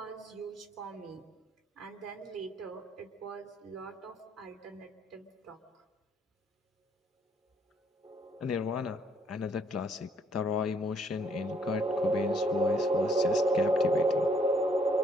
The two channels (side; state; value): both; normal; correlation 0.68